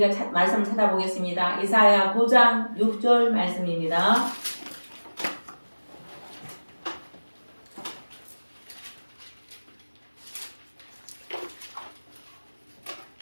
말씀을 찾아보겠습니다. 이사야 9장 6절 말씀입니다.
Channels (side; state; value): both; inverted; correlation -1.00